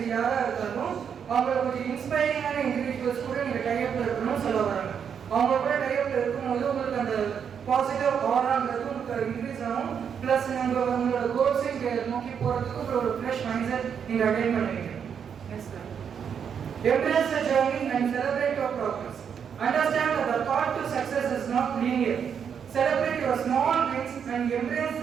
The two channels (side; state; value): left; quieter; 7.5 dB